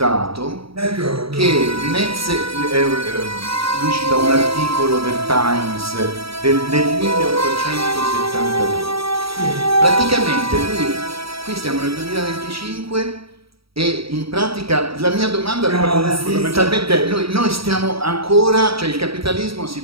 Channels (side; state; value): left; late; 0.76 ms